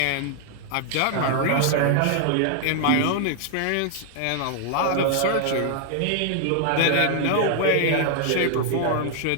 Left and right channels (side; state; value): both; different; correlation 0.00